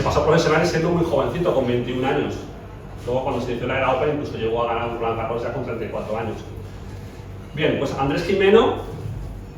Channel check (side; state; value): both; identical; correlation 1.00